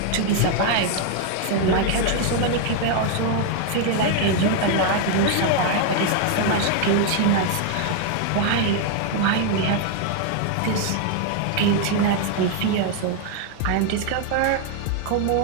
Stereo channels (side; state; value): both; different; correlation 0.00